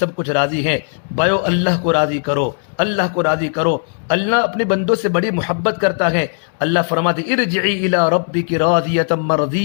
کچھ راضی ہے۔ بھائیو اللہ کو راضی کرو، اللہ کو راضی کرو۔ اللہ اپنے بندوں سے بڑی محبت کرتا ہے۔ اللہ فرماتے ارجعی الی ربک راضیۃ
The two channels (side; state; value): right; silent; digital silence